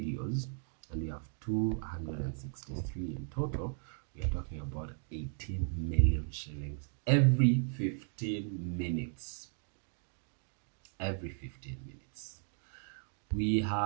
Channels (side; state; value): left; silent; 54 dB below the other